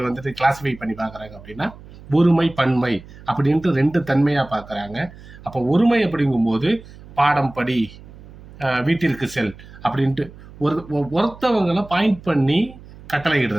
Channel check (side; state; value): right; noise; hum, 19 dB below the sound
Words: வந்துட்டு கிளாசிஃபை பண்ணி பார்க்குறாங்க அப்படின்னா ஒருமை பன்மை அப்படின்ட்டு 2 தன்மையா பார்க்குறாங்க. அப்போ ஒருமை அப்படிங்கும்போது பாடம் படி, வீட்டிற்கு செல் அப்படின்ட்டு ஒருத்தவங்களை பாயிண்ட் பண்ணி கட்டளை